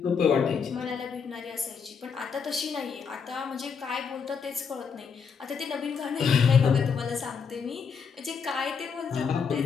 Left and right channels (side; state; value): right; quieter; 6.1 dB